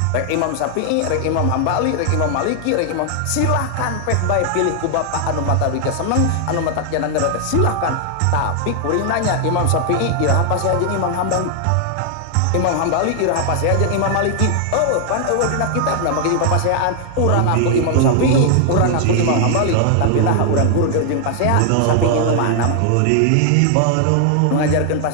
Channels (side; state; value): both; different; correlation 0.00